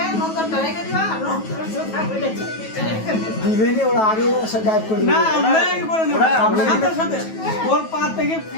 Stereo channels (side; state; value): right; late; 9.2 ms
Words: নন্দনটা রেখে দিবা আর নন্দনের জুতা বলে দিবেনি ওরা আগে এসে গায়েব করে না দিবে আমরা কি করে নেব সাথে সাথে ওর পা থেকে